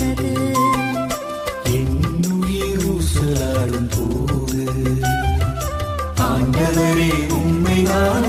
என்னுயிர் ஊசலாடும் போது ஆண்டவரே உம்மை நான்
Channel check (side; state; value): both; identical; correlation 1.00